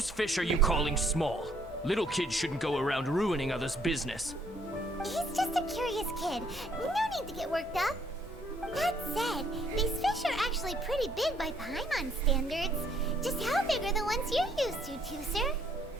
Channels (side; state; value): both; normal; correlation 0.66